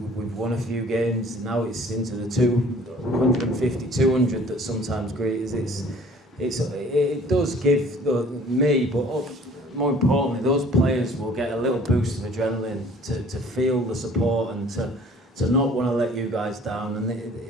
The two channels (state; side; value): normal; both; correlation 0.52